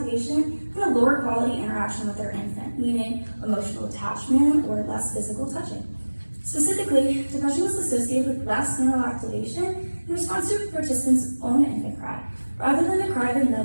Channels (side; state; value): both; inverted; correlation -1.00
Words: and a lower quality interaction with their infant, meaning emotional attachment or less physical touching. Specifically, depression was associated with less neural activation in response to participants' own infant cry, rather than the cry of